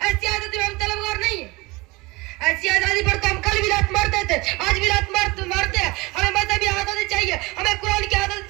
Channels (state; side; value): quieter; left; 23.3 dB